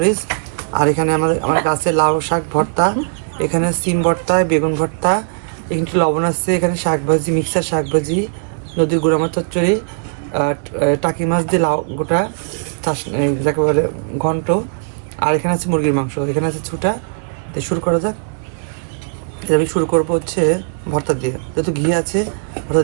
আর এখানে আমার গাছের লাউ শাক ভর্তা, এখানে সিম ভর্তা, বেগুন ভর্তা, এখানে একটু লবণ আছে, এখানে শাক ভাজি, মিক্সার শাক ভাজি, নদীর গুঁড়া মাছ চচ্চড়ি, টাকি মাছ দিয়ে লাউ গোটা চাষ যাকে বলে ঘন্ট, আর এখানে আছে মুরগির মাংস, এখানে আছে ছুটা। তো শুরু করা যাক। আমি শুরু করবো হচ্ছে ভর্তা দিয়ে, যেহেতু ঘি আছে ভর্তা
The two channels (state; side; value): silent; left; digital silence